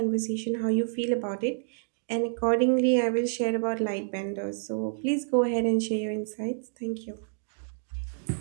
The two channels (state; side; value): silent; left; digital silence